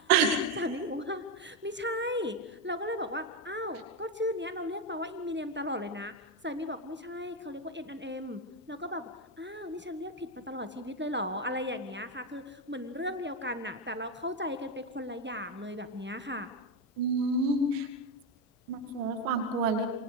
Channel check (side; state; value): both; normal; correlation 0.09